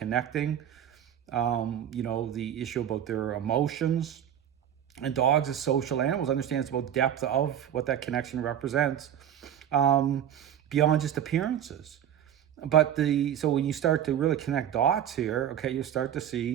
the issue about their emotions. And dogs as social animals understand it's about depth of what that connection represents, beyond just appearances. But so when you start to really connect dots here, okay, you start to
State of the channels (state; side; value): quieter; left; 9.9 dB